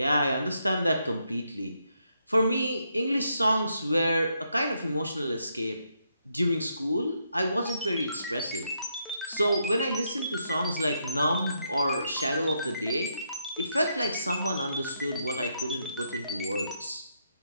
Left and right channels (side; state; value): both; inverted; correlation -0.78